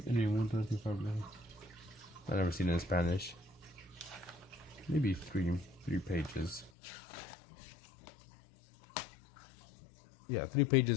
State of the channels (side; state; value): right; drops out; at 6.7 s